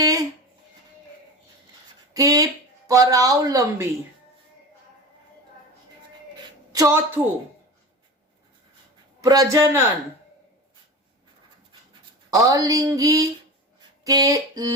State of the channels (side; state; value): both; normal; correlation 0.30